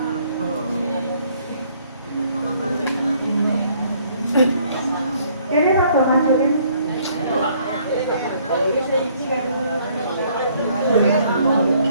Ini rada ngajuin.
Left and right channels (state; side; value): inverted; both; correlation -0.63